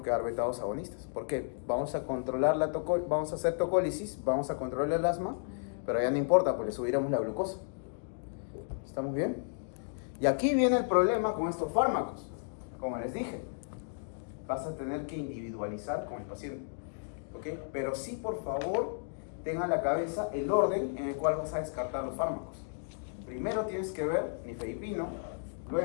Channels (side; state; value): right; silent; digital silence